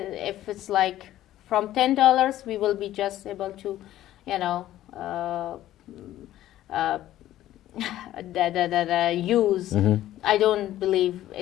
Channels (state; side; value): quieter; right; 13.7 dB